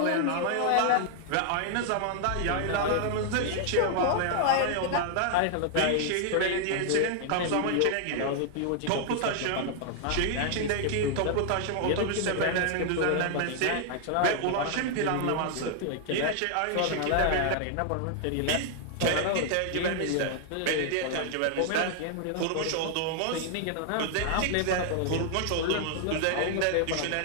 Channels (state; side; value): different; both; correlation 0.00